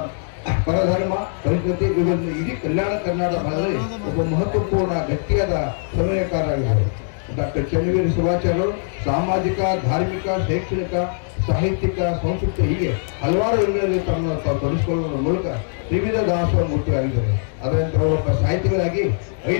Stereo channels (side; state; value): right; silent; digital silence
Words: ಪರಧರ್ಮ ಪರಿಸ್ಥಿತಿ ಇವುಗಳನ್ನು ಇಡೀ ಕಲ್ಯಾಣ ಕರ್ನಾಟಕ ಭಾಗದಲ್ಲಿ ಒಬ್ಬ ಮಹತ್ವಪೂರ್ಣ ಗಟ್ಟಿಯಾದ ಸಮನ್ವಯಕಾರರಾಗಿದ್ದಾರೆ. ಡಾಕ್ಟರ್ ಚೆನ್ನವೀರ ಶಿವಾಚಾರ್ಯರು ಸಾಮಾಜಿಕ, ಧಾರ್ಮಿಕ, ಶೈಕ್ಷಣಿಕ, ಸಾಹಿತ್ಯಿಕ, ಸಂಸ್ಕೃತಿ ಹೀಗೆ ಹಲವಾರು ರಂಗಗಳಲ್ಲಿ ತಮ್ಮನ್ನು ತಾವು ತೊಡಗಿಸಿಕೊಳ್ಳುವ ಮೂಲಕ ವಿವಿಧ ದಾಸೋಹ ಮೂರ್ತಿಯಾಗಿದ್ದಾರೆ. ಅದರಂತೆ ಅವರೊಬ್ಬ ಸಾಹಿತಿಗಳಾಗಿ